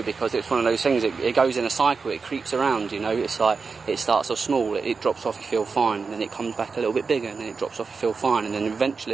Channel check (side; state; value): left; quieter; 4.8 dB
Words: because it's one of those things, it goes in a cycle, it creeps around, you know. It's like, it starts off small, it drops off, you feel fine, and then it comes back a little bit bigger, and then it drops off, you feel fine, and then